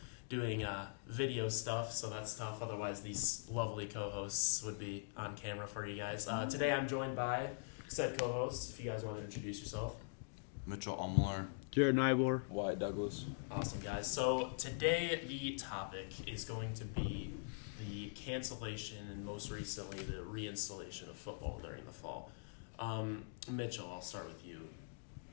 doing video stuff, so that's tough. Otherwise, these lovely co-hosts would be on camera for you guys. Today, I'm joined by said co-hosts. If you guys want to introduce yourself. Mitchell Umlar. Jared Nybor. Wyatt Douglas. Awesome, guys. So today, the topic is going to be the cancellation and most recently the reinstallation of football during the fall. Mitchell, I'll start with you.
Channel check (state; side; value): silent; right; digital silence